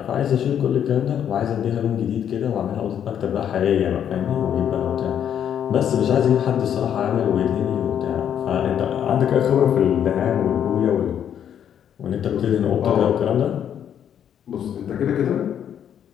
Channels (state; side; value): quieter; right; 9.3 dB